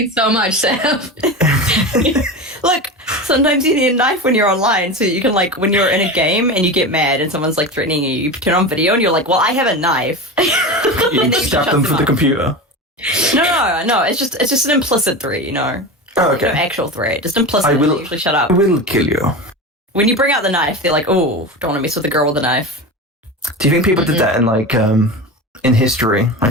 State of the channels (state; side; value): normal; both; correlation 0.25